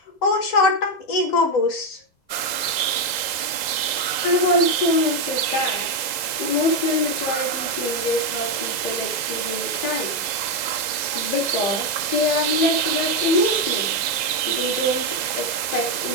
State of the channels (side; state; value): right; late; 2.0 ms